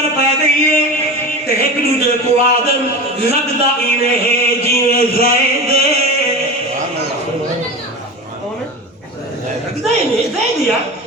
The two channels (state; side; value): normal; both; correlation 0.29